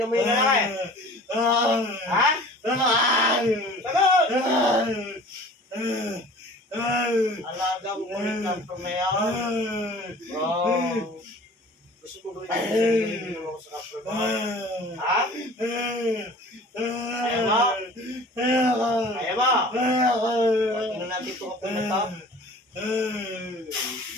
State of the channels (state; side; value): normal; both; correlation 0.45